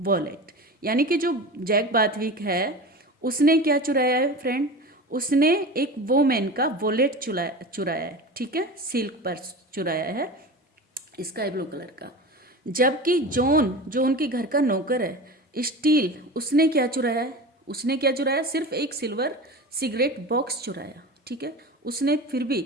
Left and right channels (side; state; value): both; normal; correlation 0.32